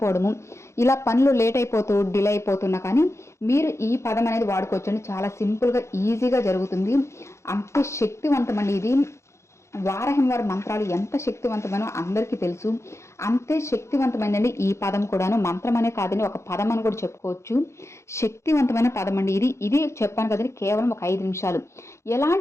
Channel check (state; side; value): late; right; 0.14 ms